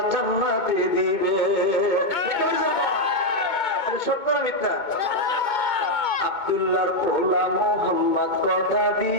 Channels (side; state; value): right; late; 2.2 ms